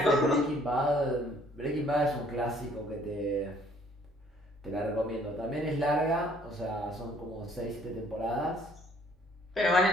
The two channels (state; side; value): normal; both; correlation 0.60